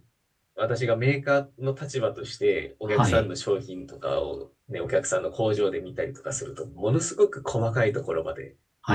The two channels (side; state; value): both; identical; correlation 1.00